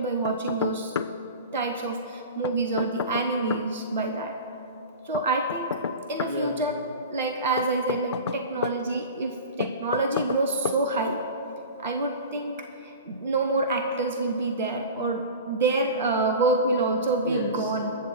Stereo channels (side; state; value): both; inverted; correlation -0.33